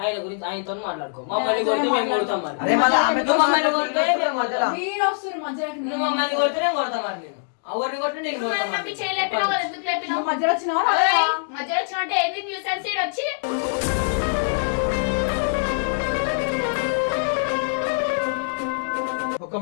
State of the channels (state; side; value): silent; right; digital silence